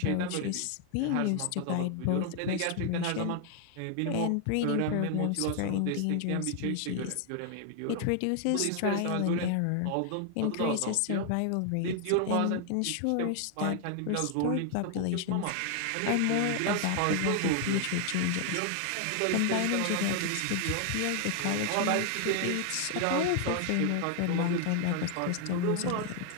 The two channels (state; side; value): different; both; correlation 0.00